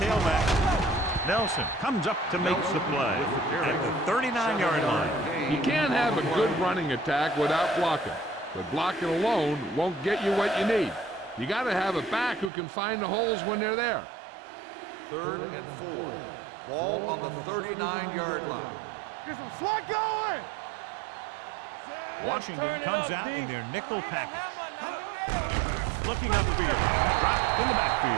Nelson comes up to make the play at the 39-yard line. You can't have a good running attack without blocking, but blocking alone won't get you what you need. You got to have a back who can find the holes when they're there. 3rd and 4. Ball on the 39-yard line. Get some slot going. Washington comes out in their nickel package. Looking upfield, dropped in the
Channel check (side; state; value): left; drops out; at 12.5 s